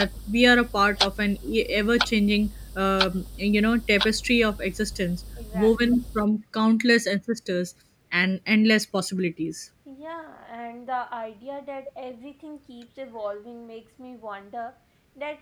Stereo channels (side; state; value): both; identical; correlation 1.00